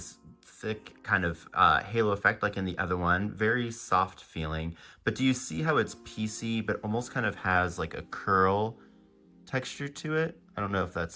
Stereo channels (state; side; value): identical; both; correlation 1.00